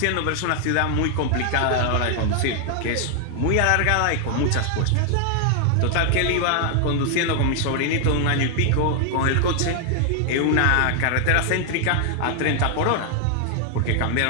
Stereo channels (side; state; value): both; different; correlation 0.00